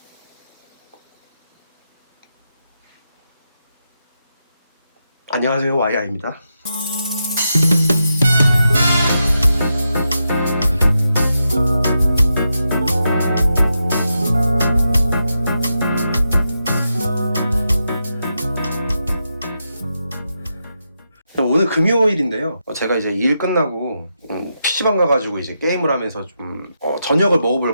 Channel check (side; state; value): both; inverted; correlation -0.86